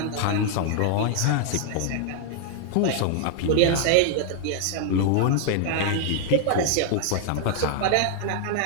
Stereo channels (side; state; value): both; different; correlation 0.00